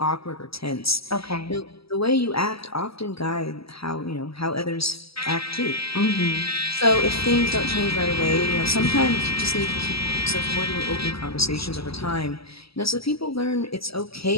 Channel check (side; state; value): right; late; 0.76 ms